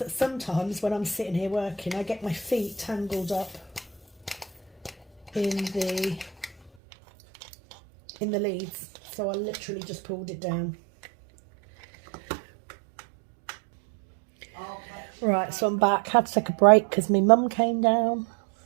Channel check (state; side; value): drops out; left; at 6.7 s